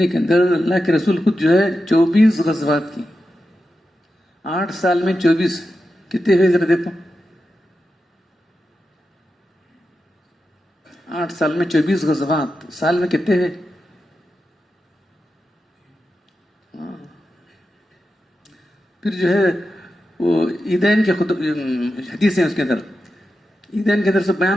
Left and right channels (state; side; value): normal; both; correlation 0.90